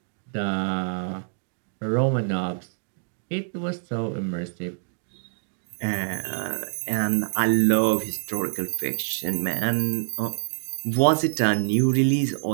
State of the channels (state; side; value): silent; left; digital silence